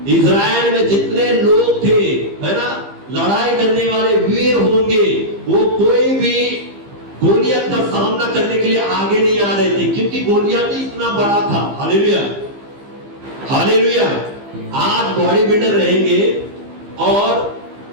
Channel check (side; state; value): left; late; 15 ms